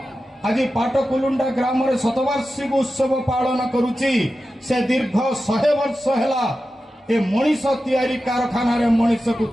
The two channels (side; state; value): both; normal; correlation 0.92